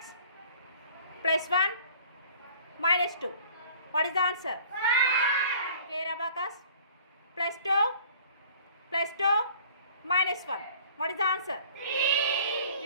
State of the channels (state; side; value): inverted; both; correlation -0.50